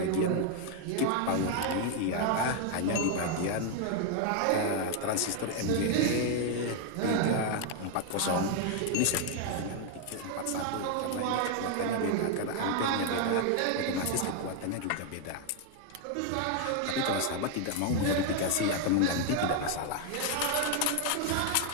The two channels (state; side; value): different; both; correlation 0.01